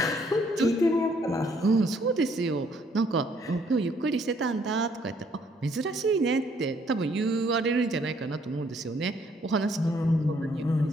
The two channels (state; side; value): normal; both; correlation 0.66